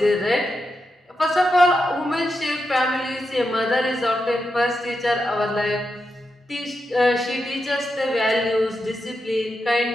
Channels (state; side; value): normal; both; correlation 0.87